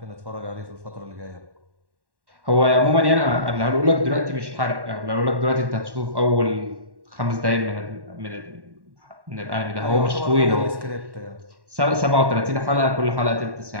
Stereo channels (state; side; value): late; left; 1.1 ms